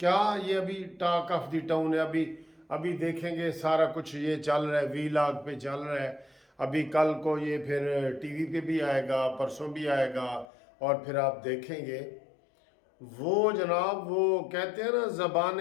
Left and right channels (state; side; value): drops out; right; at 10.5 s